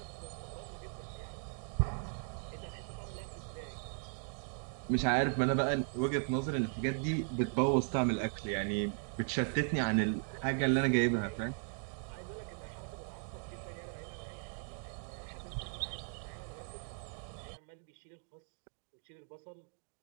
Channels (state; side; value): silent; left; 53 dB below the other